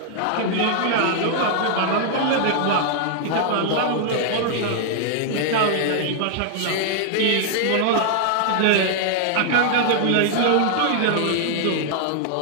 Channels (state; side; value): different; both; correlation 0.00